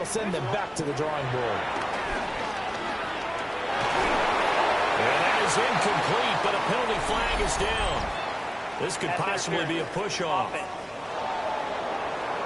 send them back to the drawing board. And that is incomplete, but a penalty flag is down. This could possibly be a push-off.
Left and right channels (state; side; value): identical; both; correlation 1.00